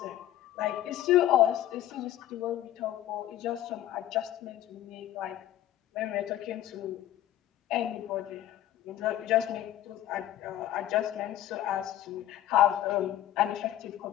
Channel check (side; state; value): right; quieter; 12.8 dB